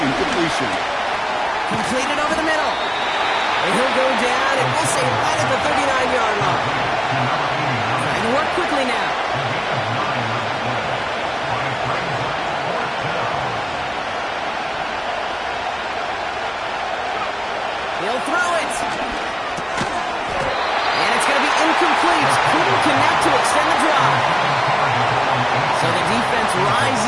incompletion. Completed over the middle. And he'll go down, and we'll say right at the 39-yard line. Trying to work quickly now. He'll throw it. And it's going to be incomplete. Couldn't connect to extend the drive. So the defense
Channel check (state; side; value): identical; both; correlation 1.00